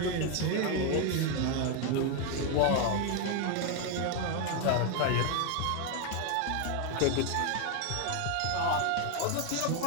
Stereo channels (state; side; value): different; both; correlation 0.01